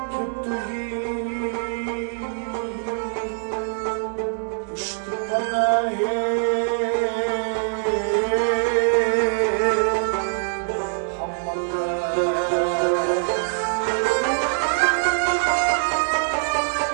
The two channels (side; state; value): left; silent; digital silence